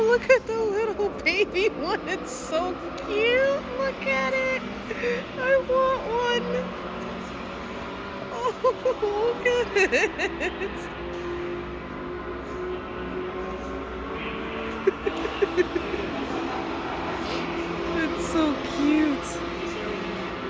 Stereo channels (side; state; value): both; identical; correlation 1.00